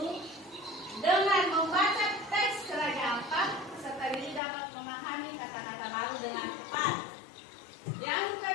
dengan membaca teks Raja Ampat, serta diri dapat memahami kata-kata baru dengan tepat. Yang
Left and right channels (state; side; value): drops out; right; at 4.4 s